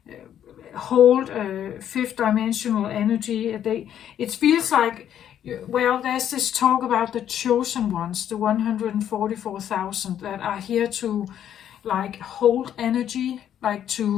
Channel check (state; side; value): quieter; right; 10.1 dB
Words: hold fifth dimensional energy. It feels like, well, there's this talk about the chosen ones, the 144,000 that are here to like hold energy, like